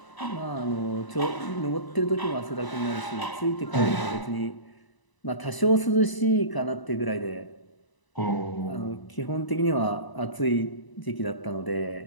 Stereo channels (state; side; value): late; right; 1.0 ms